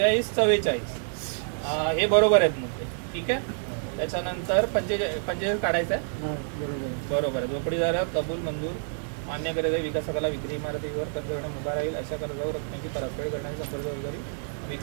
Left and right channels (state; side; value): silent; left; 60 dB below the other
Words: 44 हे बरोबर आहेत मुद्दे, ठीक आहे। त्याच्यानंतर 45 काढायचं आहे, बरोबर आहे। झोपडीधारक कबूल मंजूर मान्य करीत आहे, विकासकाला विक्री इमारतीवर कर्ज घेण्यास उभा राहील, अशा कर्जावर रकमेची परतफेड करण्याची संपूर्ण जबाबदारी